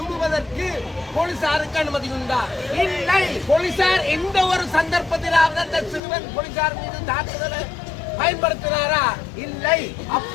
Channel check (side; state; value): right; drops out; at 6.0 s